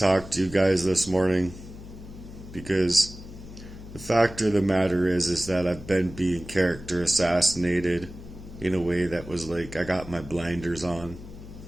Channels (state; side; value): noise; left; hum, 15 dB below the sound